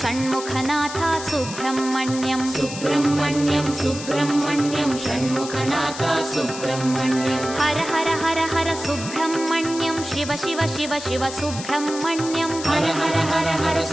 Shanmukhanath Subrahmanyam Subrahmanyam Subrahmanyam Shanmukhanath Subrahmanyam Har Har Har Har Subrahmanyam Shiva Shiva Shiva Shiva Subrahmanyam Har Har Har Har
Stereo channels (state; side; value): noise; left; hiss, 10 dB below the sound